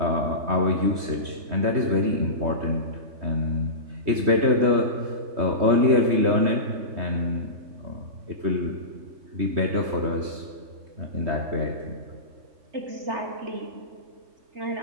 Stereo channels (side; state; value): left; late; 3.2 ms